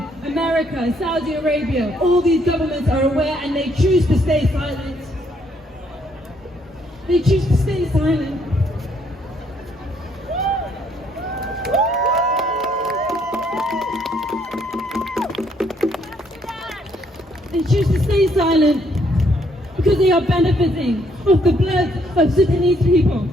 America, Saudi Arabia, all these governments are aware and they choose to stay silent. They choose to stay silent. They choose to stay silent because they are benefiting off the blood of Sudanese people.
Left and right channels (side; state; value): both; normal; correlation 0.69